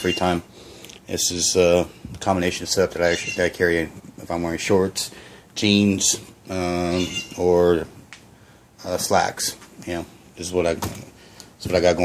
time. This is a combination of stuff that I carry if I'm wearing shorts, jeans, or slacks. This is what I got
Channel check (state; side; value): identical; both; correlation 1.00